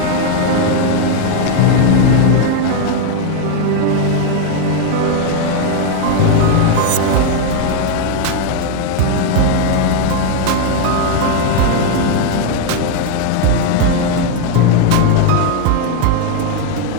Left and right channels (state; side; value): different; both; correlation 0.01